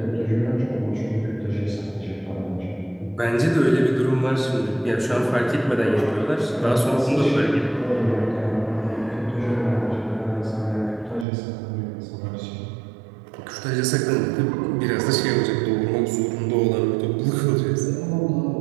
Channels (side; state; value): left; drops out; at 11.2 s